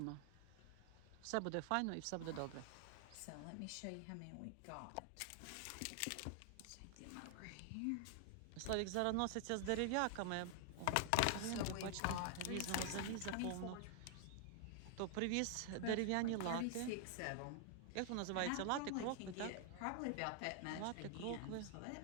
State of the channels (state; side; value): different; both; correlation 0.00